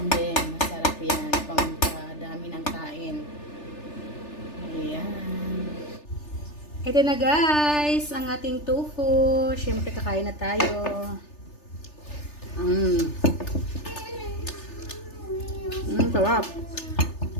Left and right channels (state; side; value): late; right; 3.3 ms